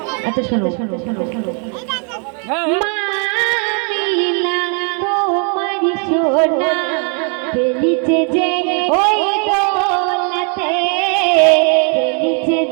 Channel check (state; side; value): quieter; left; 39.9 dB